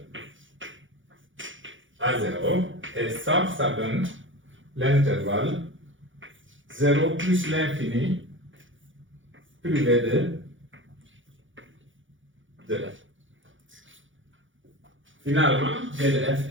à 0, et ça donne l'intervalle 0 plus l'infini privé de F. Finalement, D de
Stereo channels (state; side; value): late; left; 0.56 ms